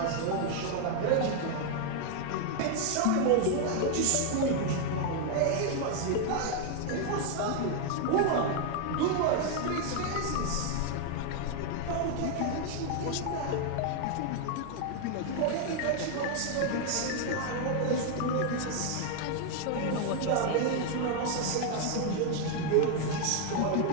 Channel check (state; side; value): different; both; correlation 0.00